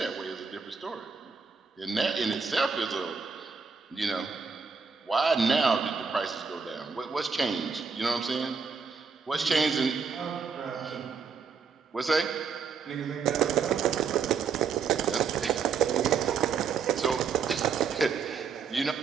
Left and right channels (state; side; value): quieter; left; 5.7 dB